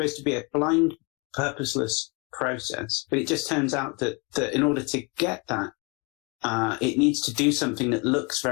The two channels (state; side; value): quieter; right; 30.4 dB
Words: to be a blind, purposeless process, but it just turns out that in order to get that, it needs to do something that looks